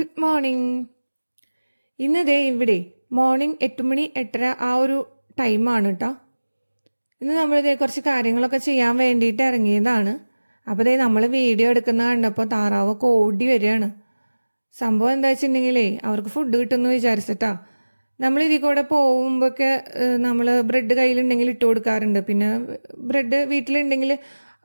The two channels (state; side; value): inverted; both; correlation -1.00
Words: morning. ഇന്ന് ഇവിടെ മോർണിംഗ് 8 മണി 8:30 ആ ഒരു ടൈമാണ് കേട്ടോ. ഇന്ന് നമ്മളിതേ കുറച്ച് കാര്യങ്ങളൊക്കെ ചെയ്യാൻ വേണ്ടിയിട്ട് ഇറങ്ങിയതാണ്. അപ്പോൾ നമ്മൾ വീഡിയോ എടുക്കുന്ന കണ്ടപ്പോൾ താറാവൊക്കെ ഓടി വരികയാണ്. സംഭവം എന്താ വെച്ചിട്ടുണ്ടെങ്കിലേ അവർക്ക് ഫുഡ് കിട്ടുമെന്ന് വിചാരിച്ചിട്ടാ. നമ്മൾ ഇതിൽ കൂടെ പോകുമ്പോഴൊക്കെ നമ്മൾ ബ്രെഡ് കയ്യിലുണ്ടെങ്കിൽ ഇട്ട് കൊടുക്കാറുണ്ട്. പിന്നെ ബ്രെഡ് വീട്ടിലുണ്ടെങ്കിൽ